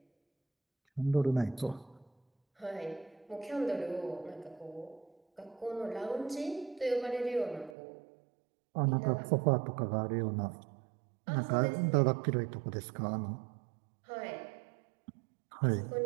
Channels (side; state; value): left; drops out; at 7.8 s